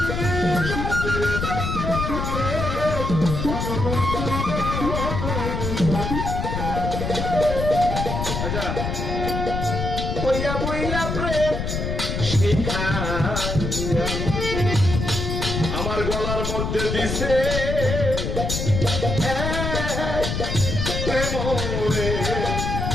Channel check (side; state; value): left; noise; rumble, 2 dB below the sound